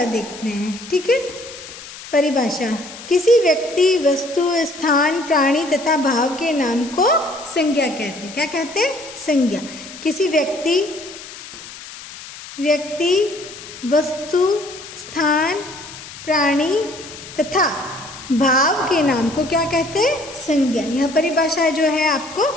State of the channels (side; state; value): left; noise; hiss, 14 dB below the sound